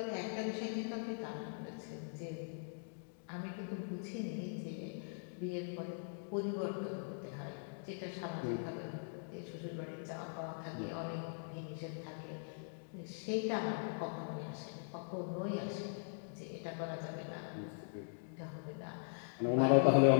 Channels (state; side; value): silent; right; digital silence